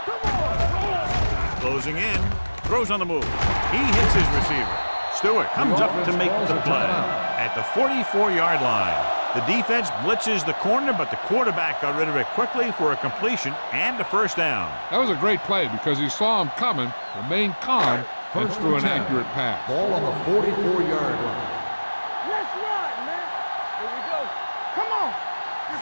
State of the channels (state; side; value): inverted; both; correlation -1.00